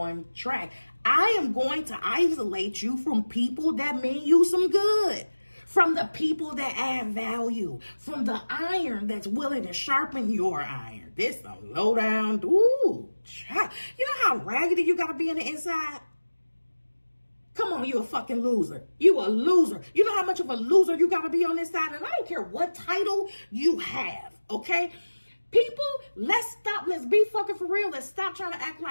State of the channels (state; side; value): inverted; both; correlation -1.00